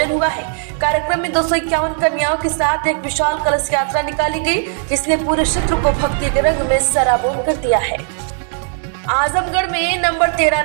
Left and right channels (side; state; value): left; silent; 57 dB below the other